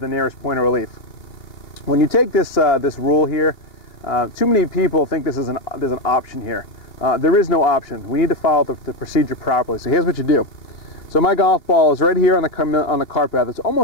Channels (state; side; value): late; right; 2.9 ms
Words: nearest point of relief. When you take this rule here, too many people think there's an option here. There is no option. We need to follow the procedure properly. So here's what you do. So my golf ball is right here on the cart path. It's